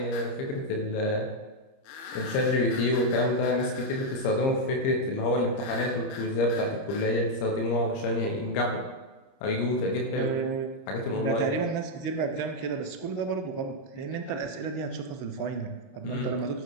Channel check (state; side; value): late; right; 30 ms